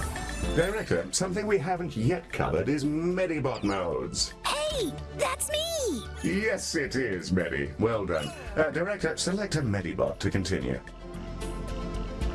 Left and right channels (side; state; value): both; identical; correlation 1.00